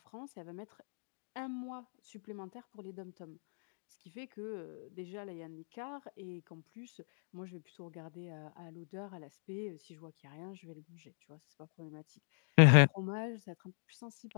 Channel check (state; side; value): silent; right; digital silence